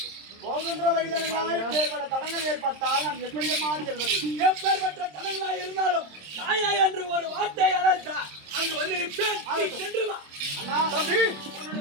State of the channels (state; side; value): late; left; 26 ms